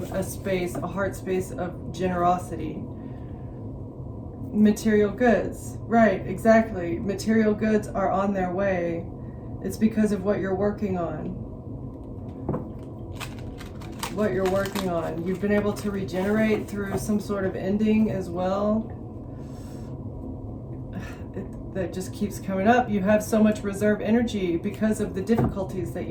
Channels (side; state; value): both; identical; correlation 1.00